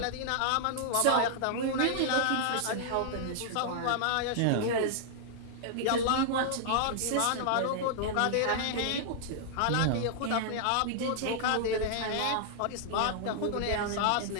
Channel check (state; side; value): different; both; correlation -0.01